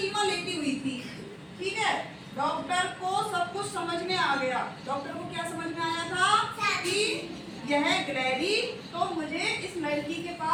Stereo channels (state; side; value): identical; both; correlation 1.00